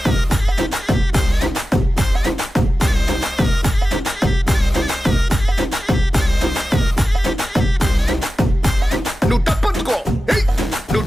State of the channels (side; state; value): both; normal; correlation 0.93